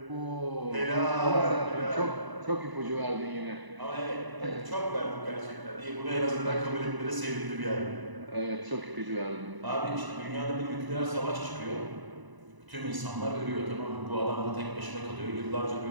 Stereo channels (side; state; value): left; late; 1.0 ms